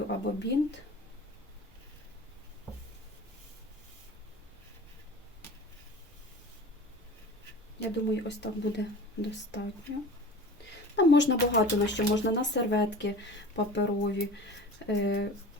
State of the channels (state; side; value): normal; both; correlation 0.38